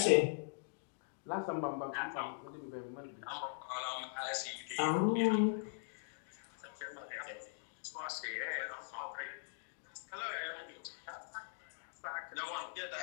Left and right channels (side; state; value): right; silent; digital silence